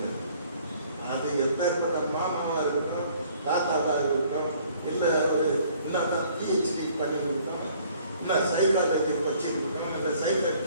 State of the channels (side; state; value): both; inverted; correlation -0.58